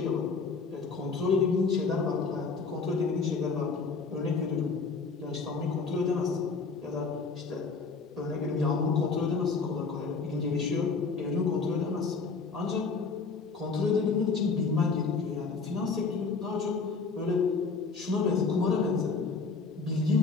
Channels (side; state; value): right; quieter; 4.6 dB